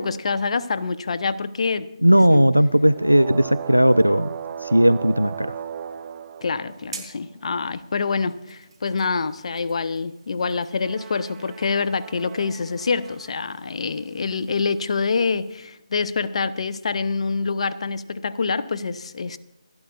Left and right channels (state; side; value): inverted; both; correlation -0.91